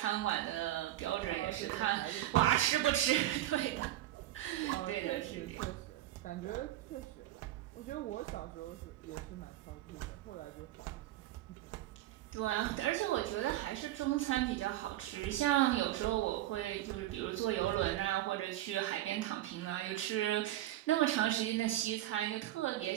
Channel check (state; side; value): quieter; left; 14.2 dB